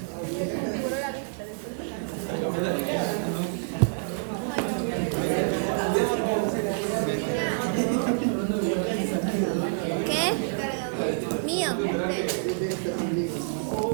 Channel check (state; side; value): silent; left; digital silence